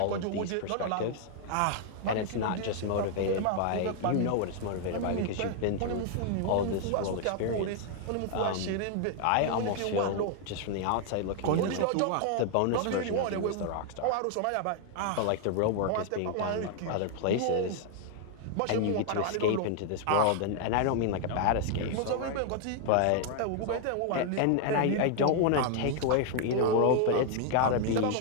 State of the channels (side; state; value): both; different; correlation 0.00